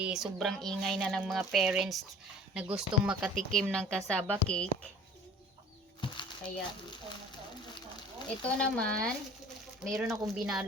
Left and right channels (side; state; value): both; normal; correlation 0.47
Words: sobrang ingay na ng mga parents na gustong makatikim ng cassava cake. Kaya ito naman, mayroon akong